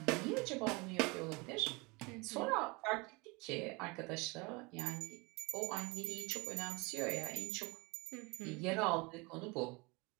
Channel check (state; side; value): quieter; left; 27.1 dB